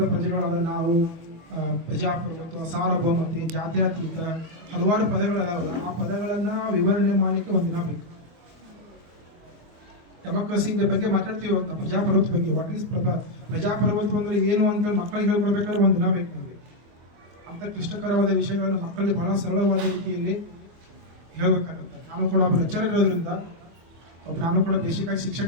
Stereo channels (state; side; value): late; left; 24 ms